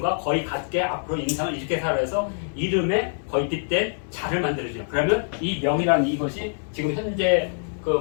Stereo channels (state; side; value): silent; right; digital silence